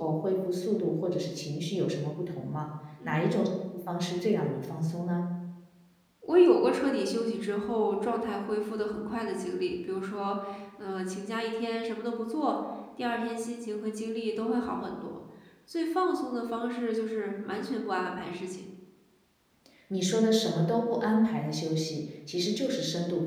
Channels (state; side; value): identical; both; correlation 1.00